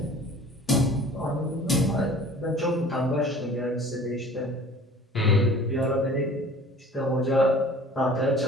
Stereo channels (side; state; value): both; normal; correlation 0.46